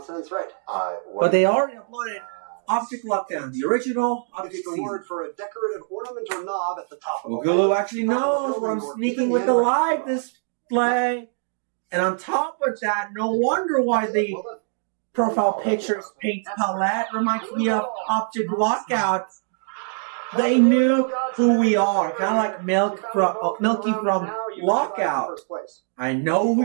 right. But they already uploaded Object Lockdown, the original Object It's the season. word for a decorative ornament or knob at the top of the Boogaloo actually knows what I'm sneaking with the live display. And on top of that, no wonder why the profile pictures paint palette reminds me of Object Lockout. They knew who we are, kind of like Milky from Lockout. I know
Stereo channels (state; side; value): silent; left; 63 dB below the other